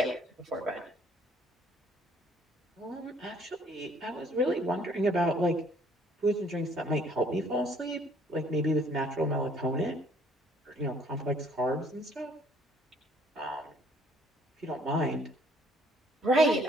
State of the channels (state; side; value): normal; both; correlation 0.61